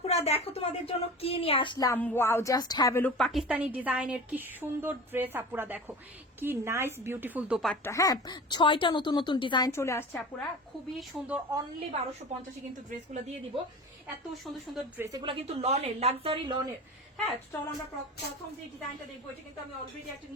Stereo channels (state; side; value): normal; both; correlation 0.34